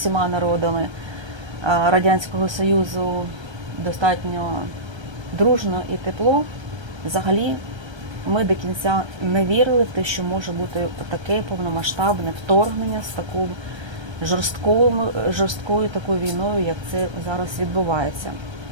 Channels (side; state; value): left; late; 1.3 ms